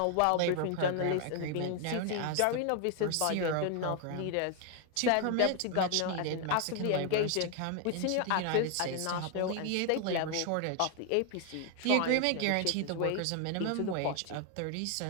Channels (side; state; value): both; different; correlation 0.00